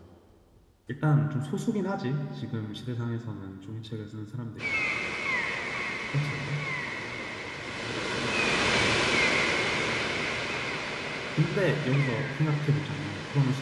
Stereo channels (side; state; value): both; identical; correlation 1.00